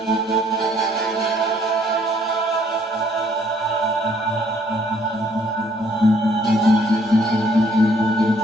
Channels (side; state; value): both; normal; correlation 0.64